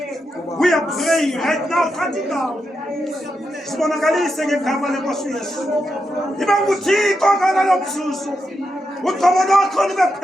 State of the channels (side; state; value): both; normal; correlation 0.86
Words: We are praying right now, cutting down. Sibonakalise ngegama lenkosi Yesu. Iba nguThixo ngalalo mzuzu. Uqobo lwakho libe